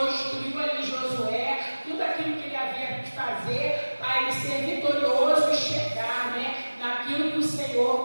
instruiu ali Josué, tudo aquilo que ele havia de fazer para ele ser vitorioso e chegar, né, naquilo que o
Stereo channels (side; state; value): both; inverted; correlation -1.00